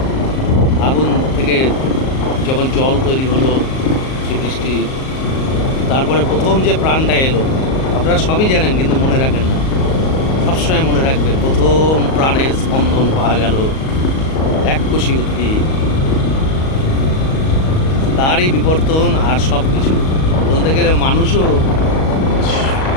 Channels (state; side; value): late; right; 38 ms